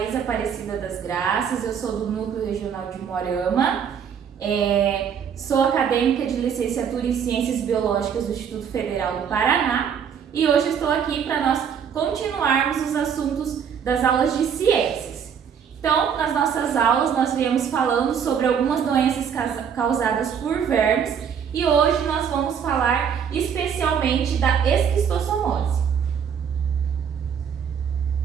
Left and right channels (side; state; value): left; quieter; 7.6 dB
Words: Aparecida das Graças, eu sou do Núcleo Regional de Moarama, sou acadêmica de licenciatura em Ciências Biológicas do Instituto Federal do Paraná e hoje estou aqui para nós continuarmos os assuntos das aulas de ciências. Então, nas nossas aulas, nós viemos falando sobre algumas doenças causadas por vermes e hoje nós vamos falar especialmente da esquistossomose.